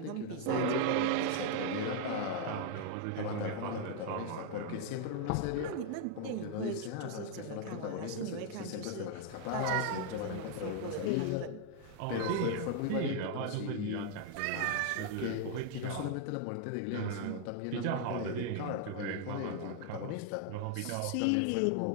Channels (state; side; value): different; both; correlation 0.00